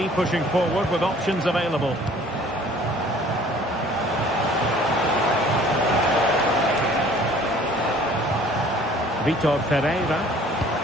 pushing forward with options available. Vitor Ferreira.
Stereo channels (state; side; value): normal; both; correlation 0.53